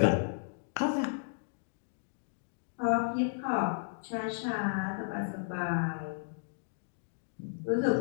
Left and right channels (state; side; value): silent; right; digital silence